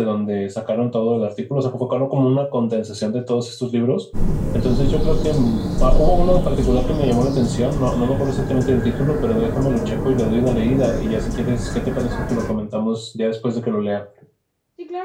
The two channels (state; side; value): identical; both; correlation 1.00